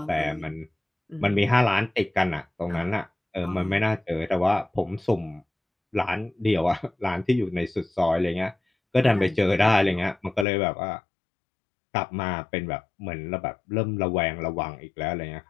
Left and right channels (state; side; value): drops out; right; at 10.5 s